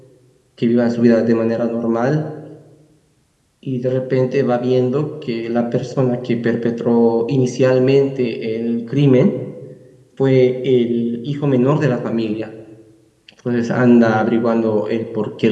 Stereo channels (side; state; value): both; identical; correlation 1.00